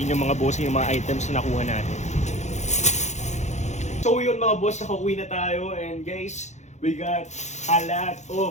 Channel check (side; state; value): right; late; 0.34 ms